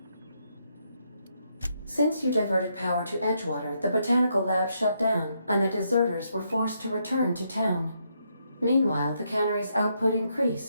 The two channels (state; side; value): inverted; both; correlation -0.77